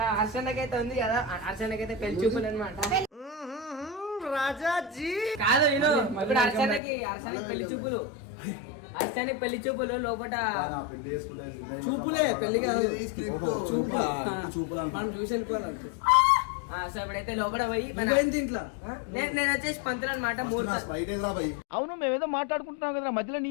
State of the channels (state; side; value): drops out; right; at 6.8 s